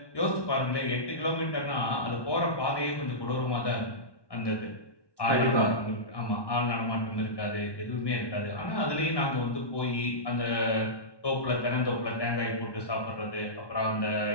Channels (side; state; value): right; late; 1.1 ms